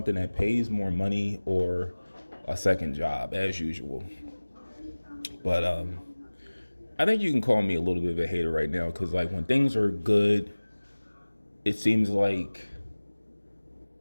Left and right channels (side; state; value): both; inverted; correlation -1.00